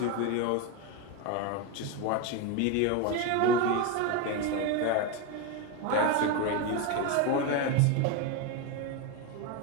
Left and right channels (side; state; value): both; different; correlation 0.03